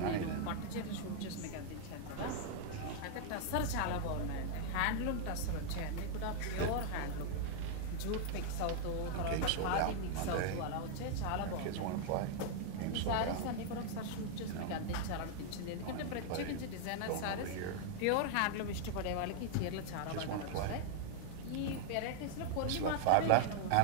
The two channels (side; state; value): both; different; correlation 0.00